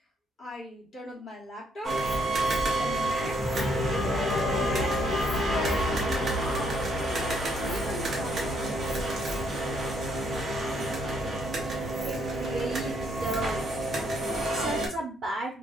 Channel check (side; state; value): both; normal; correlation 0.71